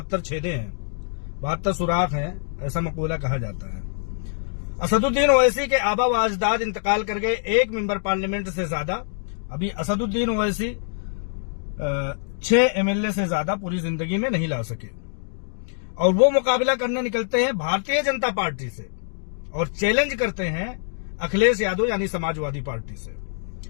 छेदे हैं, 72 सुराख हैं, ऐसा मकूला कहा जाता है। असदुद्दीन ओवैसी के आबा व अजदाद इंतकाल कर गए, एक मेंबर पार्लियामेंट से ज्यादा। अभी असदुद्दीन ओवैसी 6 एमएलए से ज्यादा पूरी जिंदगी में नहीं ला सके, और वो मुकाबला करने निकलते हैं भारतीय जनता पार्टी से और चैलेंज करते हैं अखिलेश यादव यानी समाजवादी पार्टी से।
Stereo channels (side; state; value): right; silent; digital silence